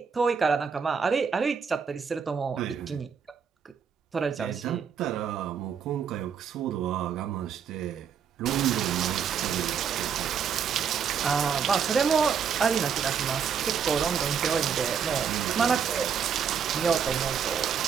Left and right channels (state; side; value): quieter; left; 7.1 dB